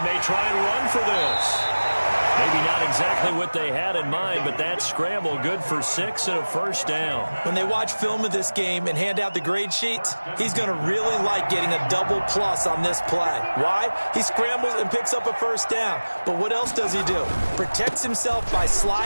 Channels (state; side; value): inverted; both; correlation -1.00